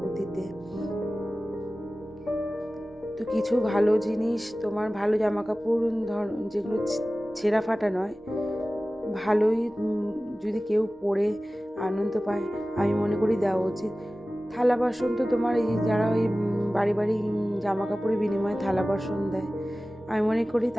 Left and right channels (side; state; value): both; normal; correlation 0.96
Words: দিতে। তো কিছু ভালো জিনিস, তোমার ভালো জামা কাপড় যেগুলো ছেঁড়া ফাটা নয়, ভালোই যদি কেউ পরে আনন্দ পায়, আমি মনে করি দেওয়া উচিত। থালা বাসন তো তোমার এই যারা ওই বাড়ি বাড়ি জামা কাপড়ের বিনিময়ে থালা বাসন দেয়, আমি মনে করি